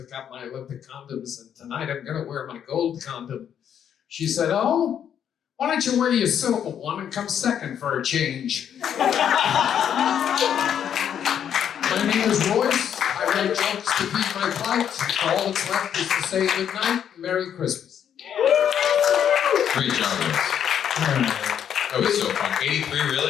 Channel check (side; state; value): right; quieter; 9.0 dB